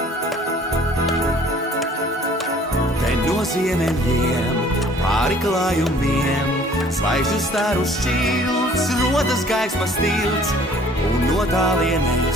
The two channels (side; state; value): both; normal; correlation 0.55